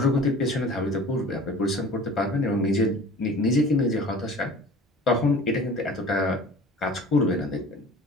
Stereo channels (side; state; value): both; normal; correlation 0.43